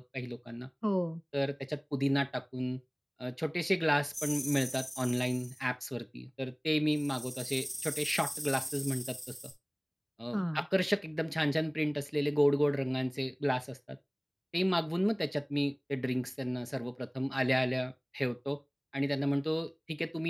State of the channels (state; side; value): identical; both; correlation 1.00